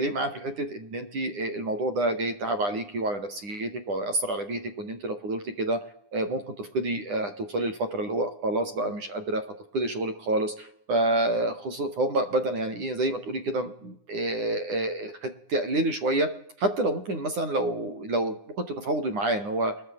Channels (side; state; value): left; late; 9.9 ms